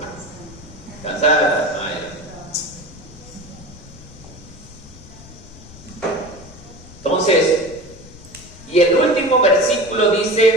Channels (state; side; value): noise; left; rumble, 19 dB below the sound